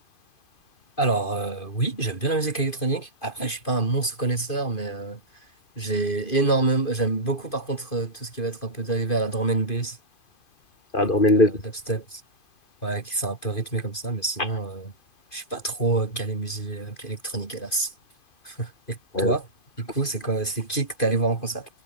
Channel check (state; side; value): late; right; 2.5 ms